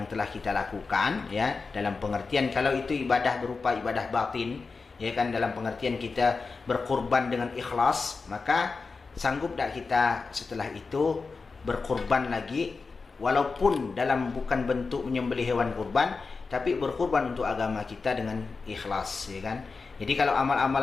telah kita lakukan, ya, dalam pengertian kalau itu ibadah berupa ibadah batin, ya kan, dalam pengertian kita berkorban dengan ikhlas, maka sanggup tak kita setelah itu berkorban lagi, walaupun dalam bukan bentuk menyembelih hewan kurban, tapi berkorban untuk agama kita dengan ikhlas, ya kan. Jadi kalau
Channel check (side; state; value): right; quieter; 4.4 dB